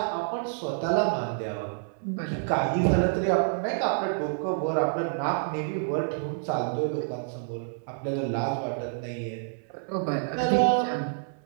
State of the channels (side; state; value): left; silent; 59 dB below the other